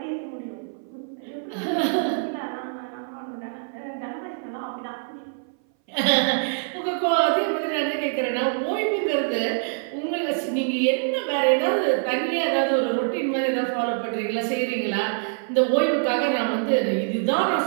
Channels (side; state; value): left; silent; 59 dB below the other